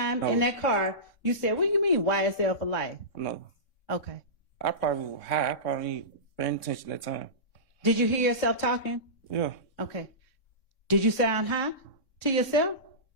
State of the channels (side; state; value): right; late; 3.6 ms